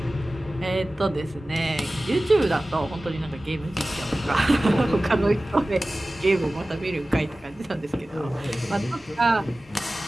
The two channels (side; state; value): both; normal; correlation 0.97